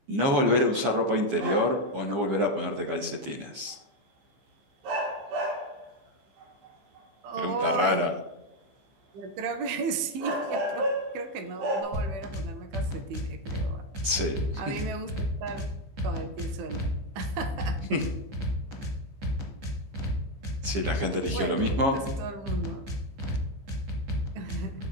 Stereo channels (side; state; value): left; late; 15 ms